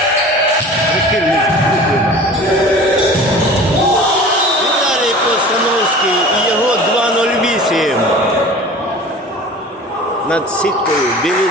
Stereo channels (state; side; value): normal; both; correlation 0.40